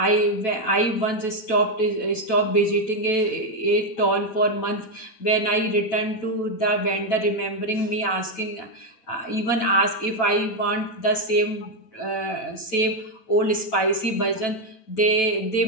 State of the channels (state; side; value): late; right; 9.1 ms